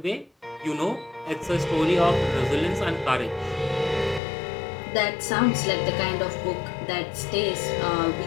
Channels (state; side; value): drops out; right; at 4.2 s